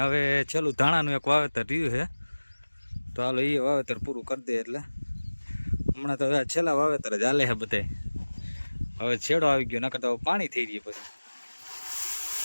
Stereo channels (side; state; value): both; inverted; correlation -1.00